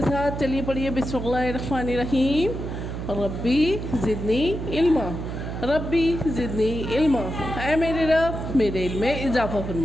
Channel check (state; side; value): noise; right; hum, 6 dB below the sound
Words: साथ। चलिए पढ़िए, बिस्मिल्लाहिर्रहमानिर्रहीम। रब्बी ज़िदनी इल्मा, रब्बी ज़िदनी इल्मा। ऐ मेरे रब मेरे इल्म में इजाफ़ा